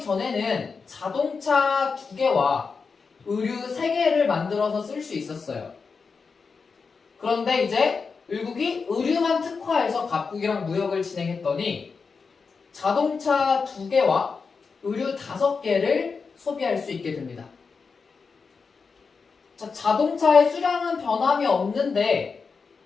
전에는 자동차 2개와 의류 3개를 만들어서 쓸 수 있었어요. 그런데 이제 을국이 의류만 특화해서 각국이랑 무역을 진행했더니 자동차 2개와 의류 5개를 소비할 수 있게 됩니다. 자, 자동차의 수량은 변함이 없는데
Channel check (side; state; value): right; quieter; 5.0 dB